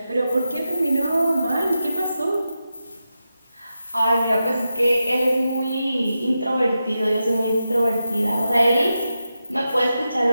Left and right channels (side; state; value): both; inverted; correlation -0.89